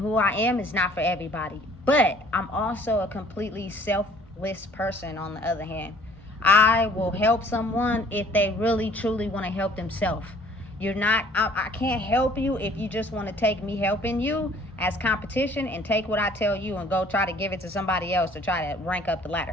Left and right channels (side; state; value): both; normal; correlation 0.56